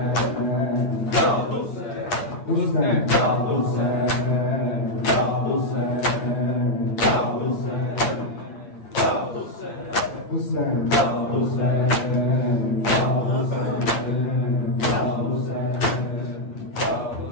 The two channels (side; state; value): right; late; 8.8 ms